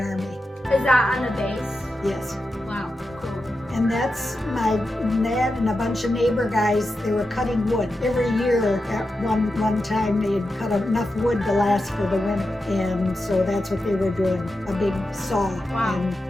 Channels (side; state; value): both; normal; correlation 0.89